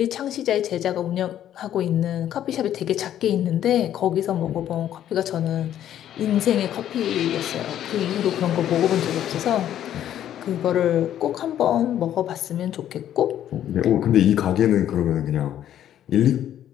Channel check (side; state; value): right; quieter; 11.1 dB